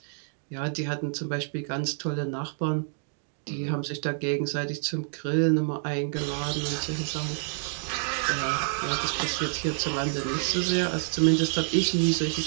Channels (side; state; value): left; silent; digital silence